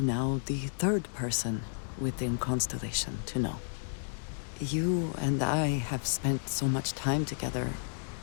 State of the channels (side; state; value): right; silent; digital silence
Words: the third person within Constellation to know. You and I have spent so much time together.